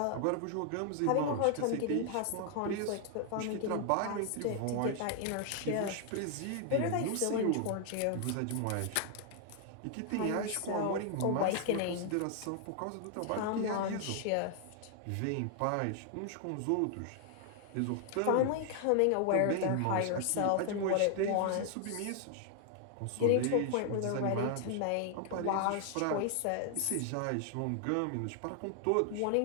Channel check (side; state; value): both; different; correlation 0.00